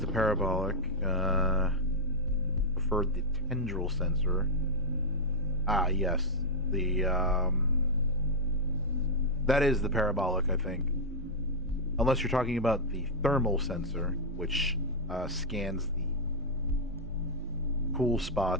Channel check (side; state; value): both; normal; correlation -0.04